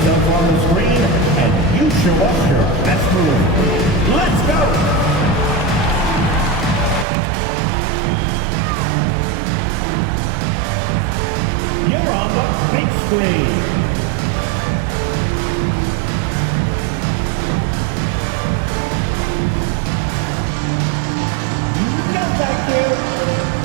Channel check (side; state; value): left; drops out; at 7.1 s